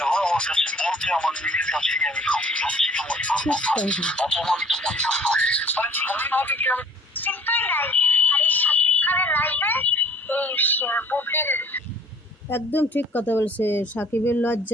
আমার কাছে বলতে আমার নিজের কাছে আমি খুব লজ্জিত মনে করবো, অপমানিত মনে করবো। মানে ধন্যভাবে কি আমি চিন্তাই নাই। আর এই শাকিব খানের লাইভে এই বুবলির একদম ঠিক কথা বলছে। সাকিবের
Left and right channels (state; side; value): normal; both; correlation 0.52